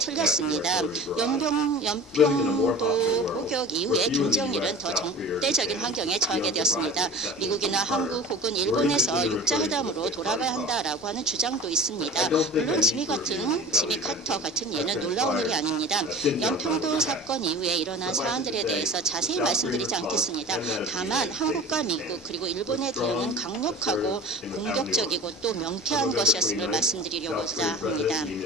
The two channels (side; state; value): both; normal; correlation 0.38